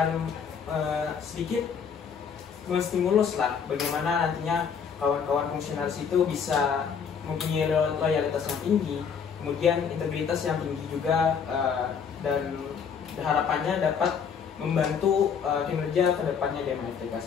sedikit menstimulus lah bagaimana nantinya kawan-kawan fungsionaris itu bisa mempunyai loyalitas yang tinggi, kemudian integritas yang tinggi juga, dan harapannya dapat membantu kinerja kedepannya DMFTK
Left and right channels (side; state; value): right; quieter; 6.7 dB